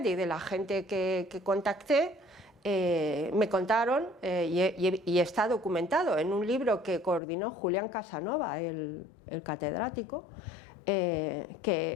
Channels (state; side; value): drops out; right; at 7.2 s